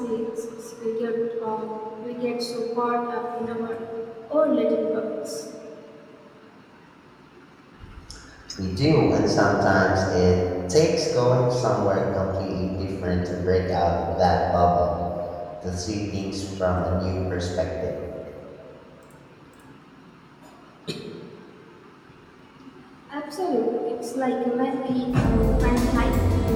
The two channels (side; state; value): both; identical; correlation 1.00